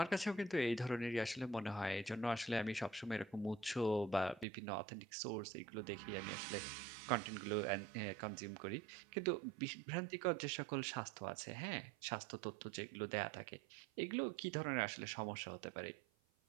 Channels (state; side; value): drops out; left; at 4.5 s